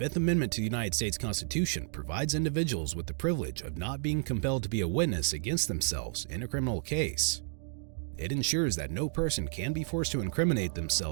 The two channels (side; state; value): left; silent; digital silence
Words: Amendment to the United States Constitution provides individuals with the privilege of not being compelled to be a witness against themselves in a criminal case. It ensures that no person can be forced to incriminate